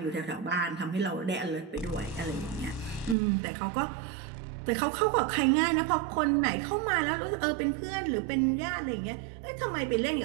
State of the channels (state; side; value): drops out; left; at 3.2 s